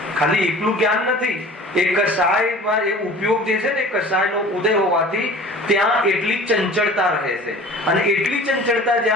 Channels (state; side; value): normal; both; correlation 0.43